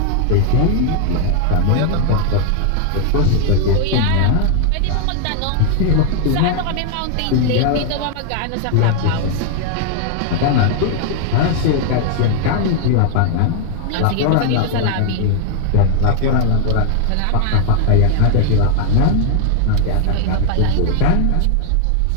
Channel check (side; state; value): both; different; correlation 0.00